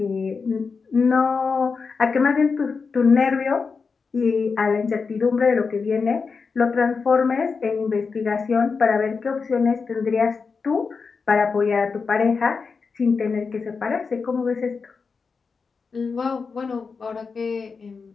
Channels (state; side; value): quieter; right; 5.0 dB